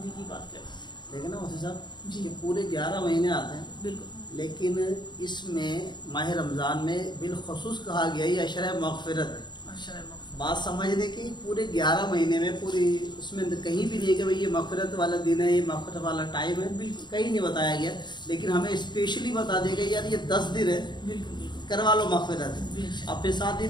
کی بات کریں۔ لیکن نا مفتی صاحب جی، پورے 11 مہینے آتے ہیں بالکل، لیکن اس میں ماہ رمضان میں بالخصوص کہا گیا یہ عشرہ مغفرت ہے۔ عشرہ مغفرت بات سمجھنے کی پورے 11 مہینے میں پوری اس میں کہیں بھی نہیں کہ بھئی یہ مغفرت والا دن ہے، یہ مغفرت والا ٹائم ہے، بالکل کہیں نہیں بتایا گیا، لیکن ہمیں اسپیشلی بتا دیا گیا یار یہ 10 دن ہے، کروا لو مغفرت۔ اب پھر ساتھ ہی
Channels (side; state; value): right; late; 0.22 ms